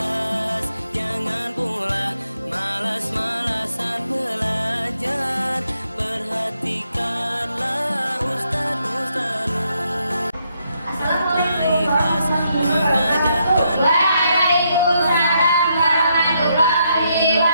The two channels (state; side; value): inverted; both; correlation -0.77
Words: jangan pula malas-malasan belajar. Perhatikanlah ustaz-ustazmu serta ikhlas mengajarkan. Waalaikumsalam warahmatullahi